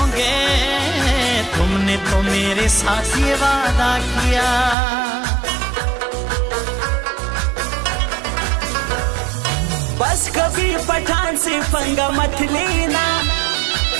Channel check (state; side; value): drops out; left; at 4.8 s